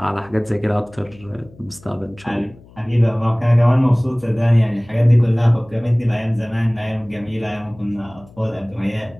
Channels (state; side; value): noise; left; hum, 24 dB below the sound